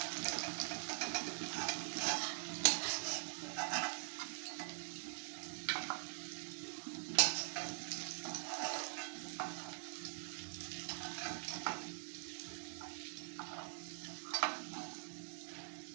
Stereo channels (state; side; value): silent; left; digital silence